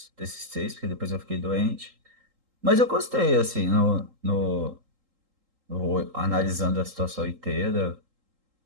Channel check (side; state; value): left; late; 3.8 ms